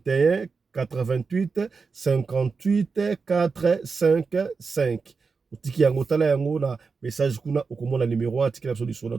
88 58 455. Tiki yango tala yango na message kuna okomona numéro a tikela biso lisolo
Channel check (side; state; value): left; quieter; 4.8 dB